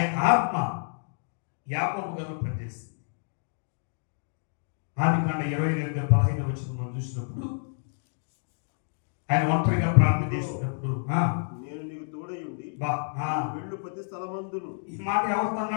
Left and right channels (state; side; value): silent; right; digital silence